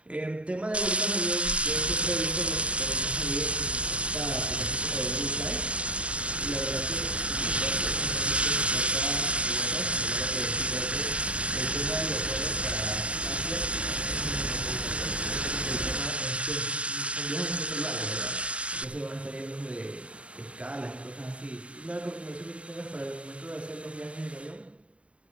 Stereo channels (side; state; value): left; late; 0.061 ms